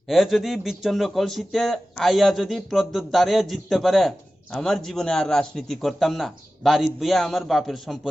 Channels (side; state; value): both; normal; correlation 0.95